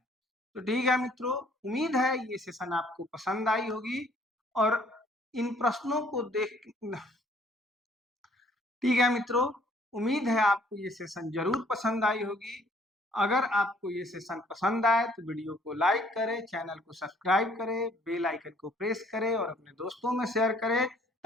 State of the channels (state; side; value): normal; both; correlation 0.61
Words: तो ठीक है मित्रों, उम्मीद है ये सेशन आपको पसंद आई होगी और इन प्रश्नों को देख ठीक है मित्रों, उम्मीद है आपको ये सेशन जरूर पसंद आई होगी। अगर आपको ये सेशन पसंद आए तो वीडियो को लाइक करें, चैनल को सब्सक्राइब करें, बेल आइकन को प्रेस करें और अपने दोस्तों में शेयर करें